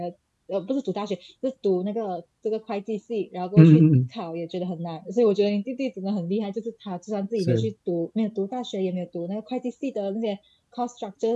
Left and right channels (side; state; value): both; identical; correlation 1.00